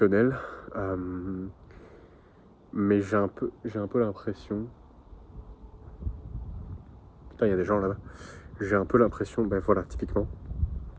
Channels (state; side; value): identical; both; correlation 1.00